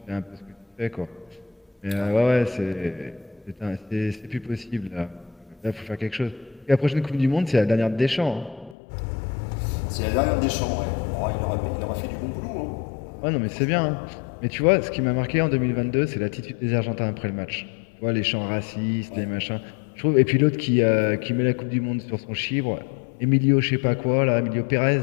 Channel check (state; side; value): drops out; right; at 8.8 s